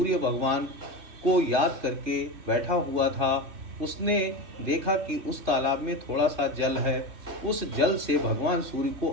भगवान को याद करके बैठा हुआ था। उसने देखा कि उस तालाब में थोड़ा सा जल है। उस जल से भगवान सूर्य को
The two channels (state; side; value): late; left; 2.9 ms